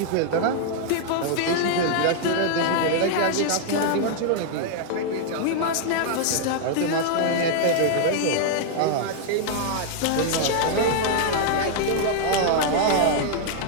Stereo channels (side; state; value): both; different; correlation -0.01